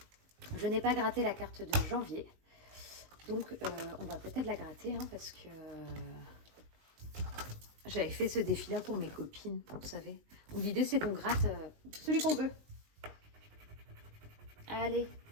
n'ai pas gratté la carte de janvier. Donc, on va peut-être la gratter, hein, parce que j'avais fait ce défi-là pour mes copines, vous savez. L'idée, c'est qu'on gratte celui qu'on veut. Allez,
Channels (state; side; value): late; left; 19 ms